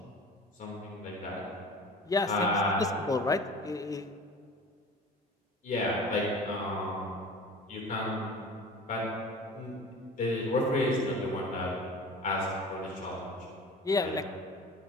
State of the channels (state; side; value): normal; both; correlation 0.39